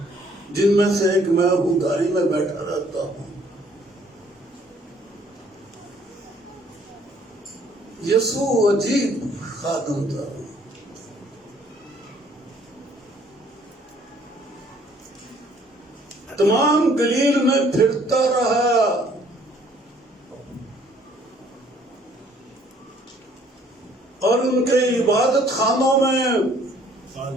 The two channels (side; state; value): both; normal; correlation 0.60